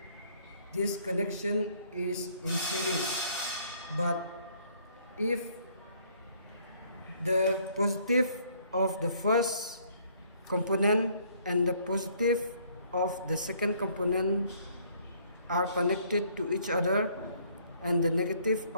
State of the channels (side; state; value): both; inverted; correlation -0.63